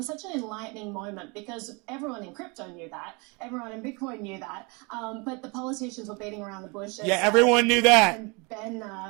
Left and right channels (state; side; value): quieter; left; 29.8 dB